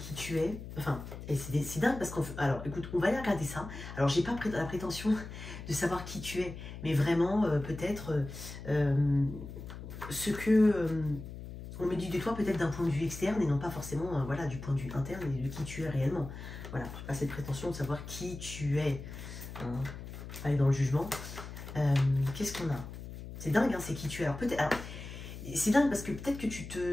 tu es. Enfin, et c'est dingue parce qu'on... Alors, écoute, on va aller regarder ça. Alors, j'ai pas la prétention de savoir qui tu es, mais vraiment, peut-être ce que on me dit de toi, peut-être d'un point de vue externe et non pas forcément voilà, du point de vue interne et de qui tu es réellement. Voilà, je n'ai pas cette prétention de savoir qui tu es. Hein. Aller dans le jugement. Qu'est-ce qu'on a? C'est dingue, hein, c'est qui tu es. Alors, peut-être... C'est dingue parce que peut-être que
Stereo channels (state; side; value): noise; left; hum, 11 dB below the sound